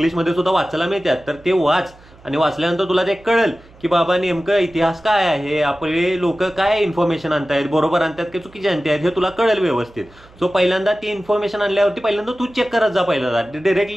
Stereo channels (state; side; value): noise; right; hum, 26 dB below the sound